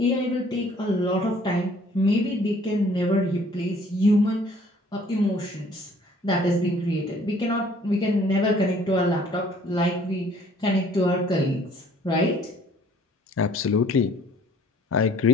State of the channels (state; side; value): normal; both; correlation 0.57